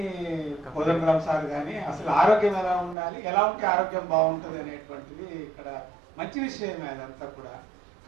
కోదండరామ్ సార్ కానీ అసలు ఆరోగ్యం ఎలా ఉండాలి, ఎలా ఉంటే ఆరోగ్యం బాగుంటుంది అనేటువంటిది ఇక్కడ మంచి విషయమే అదంతా కూడా.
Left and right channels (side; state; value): left; drops out; at 3.0 s